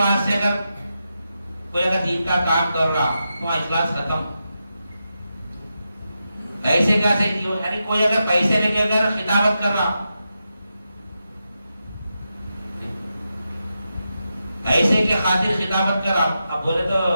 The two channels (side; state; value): both; inverted; correlation -0.88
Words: اگر کوئی اگر دین کا کام کر رہا تو اخلاص ختم. پیسے کیسے یعنی کوئی اگر پیسے لے کے اگر خطابت کر رہا ایسے کے خاطر خطابت کر رہا. اب بولے تو